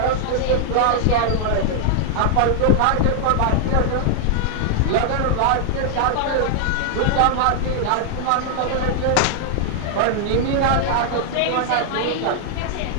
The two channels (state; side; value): different; both; correlation 0.00